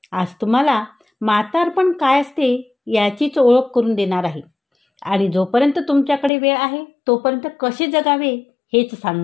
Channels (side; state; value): right; drops out; at 6.3 s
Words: आज तुम्हाला म्हातारपण काय असते याचीच ओळख करून देणार आहे आणि जोपर्यंत तुमच्याकडे वेळ आहे तोपर्यंत कसे जगावे हेच